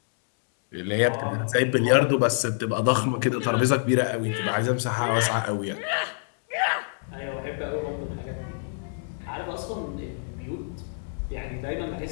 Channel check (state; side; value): silent; right; digital silence